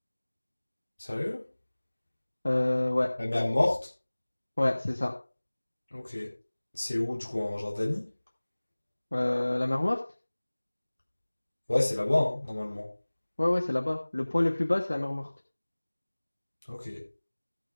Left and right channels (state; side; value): inverted; both; correlation -1.00